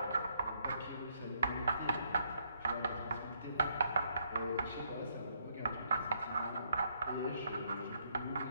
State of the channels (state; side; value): inverted; both; correlation -0.72